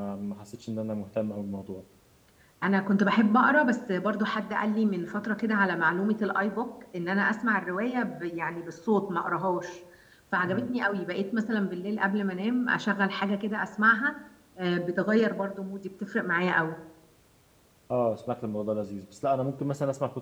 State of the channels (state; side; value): identical; both; correlation 1.00